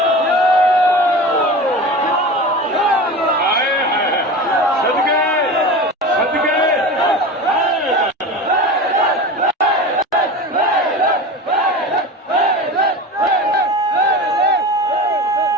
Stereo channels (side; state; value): both; normal; correlation 0.31